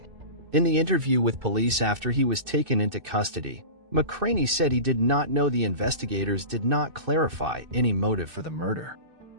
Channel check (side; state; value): left; late; 2.6 ms